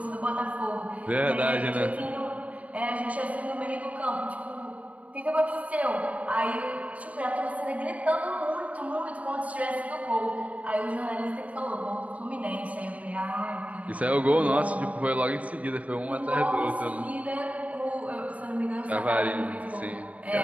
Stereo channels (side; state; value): left; late; 0.068 ms